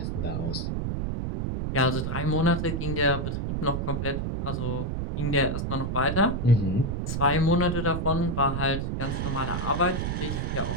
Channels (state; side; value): noise; right; rumble, 1 dB below the sound